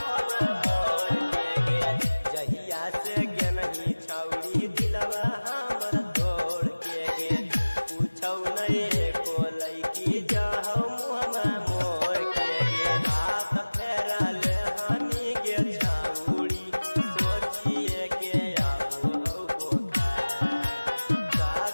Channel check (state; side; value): inverted; both; correlation -1.00